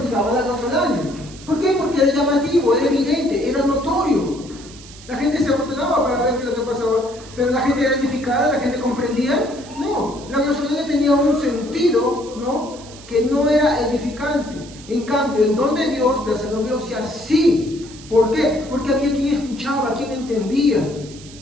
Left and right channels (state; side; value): noise; right; hiss, 19 dB below the sound